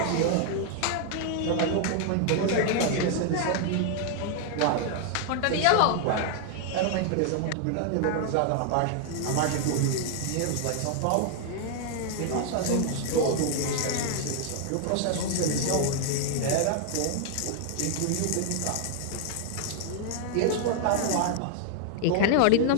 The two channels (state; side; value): different; both; correlation 0.00